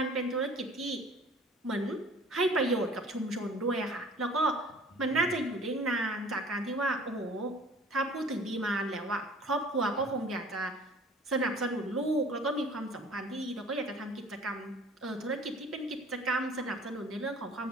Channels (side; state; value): both; normal; correlation 0.48